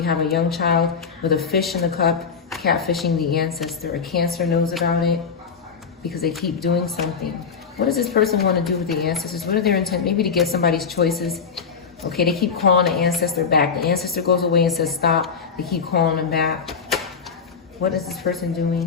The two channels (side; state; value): right; quieter; 5.9 dB